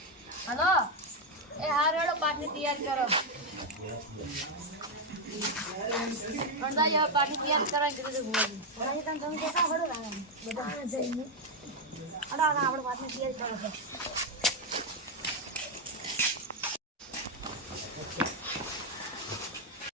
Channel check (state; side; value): normal; both; correlation 0.03